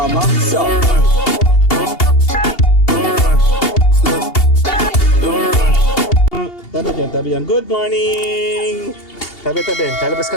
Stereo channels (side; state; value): right; late; 2.8 ms